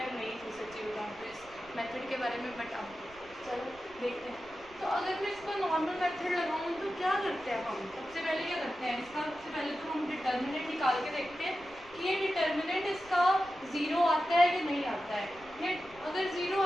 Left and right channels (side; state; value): right; noise; rumble, 24 dB below the sound